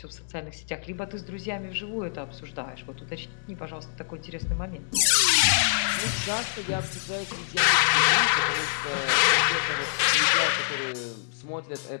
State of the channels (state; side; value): silent; right; digital silence